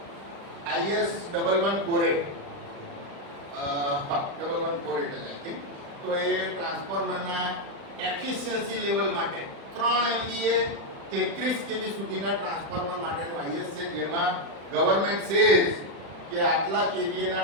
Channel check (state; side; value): late; left; 36 ms